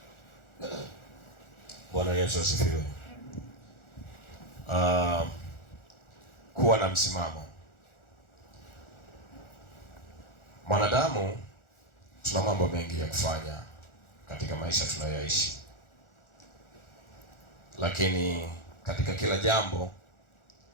Bwana Yesu asifiwe. Kuwa na msimamo. Mwanadamu tuna mambo mengi ya kufanya katika maisha tunayoishi, lakini katika kila jambo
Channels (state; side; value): late; right; 1.4 ms